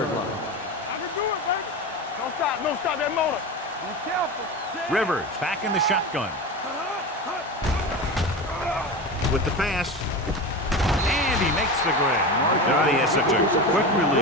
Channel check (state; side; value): normal; both; correlation 0.26